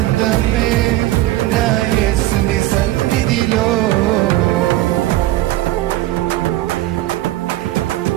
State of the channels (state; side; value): quieter; left; 15.9 dB